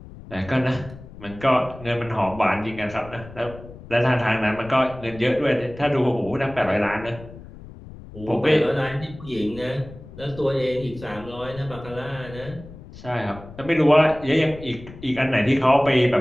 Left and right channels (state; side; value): noise; left; rumble, 17 dB below the sound